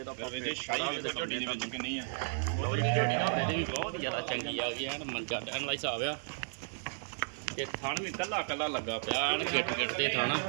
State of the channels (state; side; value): silent; left; digital silence